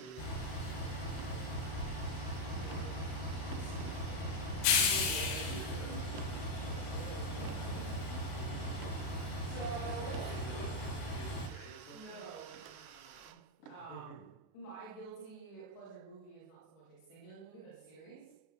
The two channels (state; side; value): late; right; 31 ms